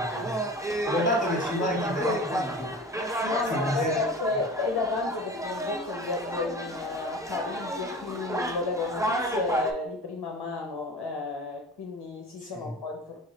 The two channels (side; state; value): both; normal; correlation 0.36